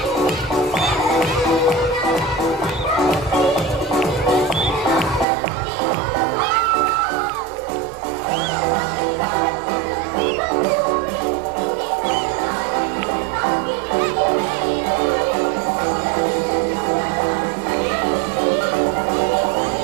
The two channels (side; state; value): left; drops out; at 5.2 s